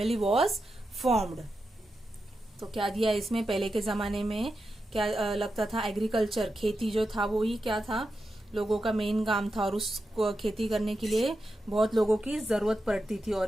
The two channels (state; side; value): normal; both; correlation 0.89